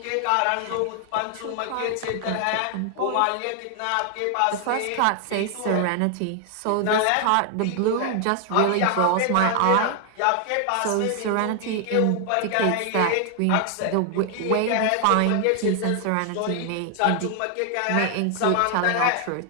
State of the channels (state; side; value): different; both; correlation 0.00